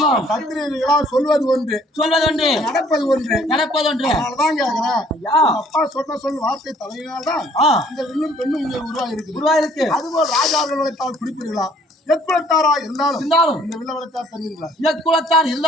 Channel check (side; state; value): both; normal; correlation 0.60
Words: சத்திரியர்களா சொல்வது ஒன்று சொல்வதொன்று நடப்பது ஒன்று நடப்பதொன்று. அதனாலதான் கேக்குறேன் ஐயா அப்பா சொன்ன சொல் வார்த்தை தலையினால்தான் ஆ, இந்த வில்லும் பெண்ணும் இங்கே உருவாகி இருக்குது உருவாயிருக்கு. அதுபோல் ராஜார்கள் வளைத்தால் குறிப்பீர்களா எக்குலத்தாரா இருந்தாலும் இருந்தாலும் இந்த வில்ல வளைத்தால் தருவீர்களா இயக்குலத்தான்